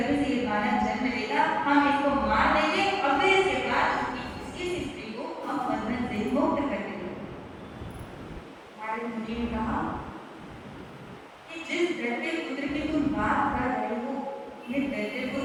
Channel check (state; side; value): identical; both; correlation 1.00